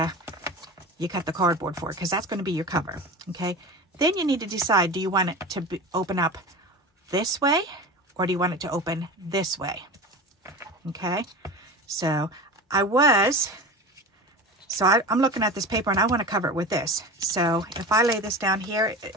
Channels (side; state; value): both; normal; correlation 0.31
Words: cardboard for it, because that's going to be your cover, okay. Then you need to decide, do you want it to open up this way, or do you want it to open this way? Okay, so I'm looking at this paper and I want to cover it with this. So if I lay this down here,